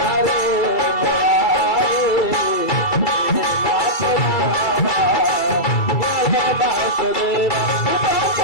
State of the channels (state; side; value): late; right; 2.3 ms